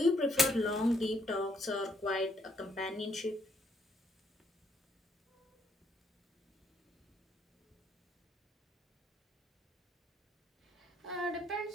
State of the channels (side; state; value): both; normal; correlation 0.70